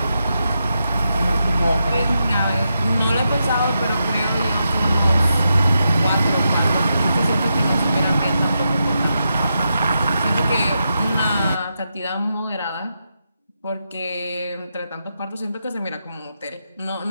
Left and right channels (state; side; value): inverted; both; correlation -0.86